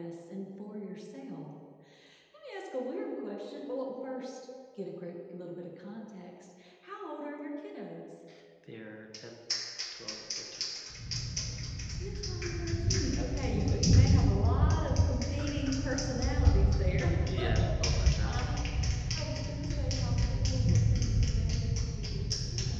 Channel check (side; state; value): both; identical; correlation 1.00